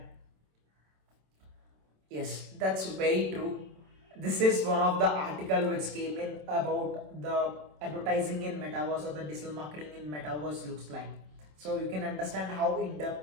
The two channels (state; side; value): late; left; 27 ms